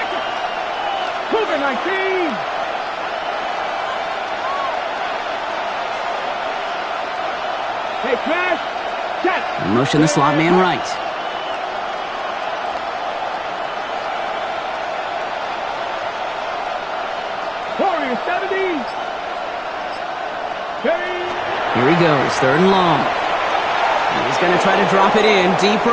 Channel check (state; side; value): identical; both; correlation 1.00